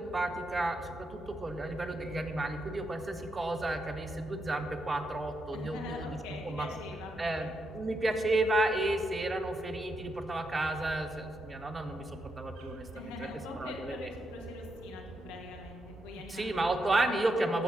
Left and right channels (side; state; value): both; normal; correlation 0.82